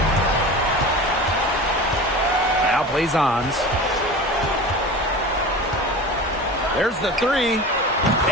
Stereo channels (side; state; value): both; normal; correlation 0.33